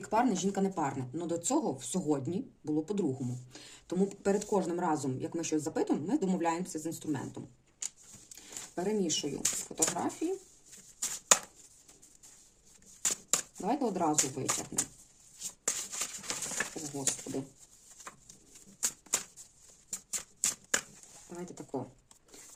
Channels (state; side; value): identical; both; correlation 1.00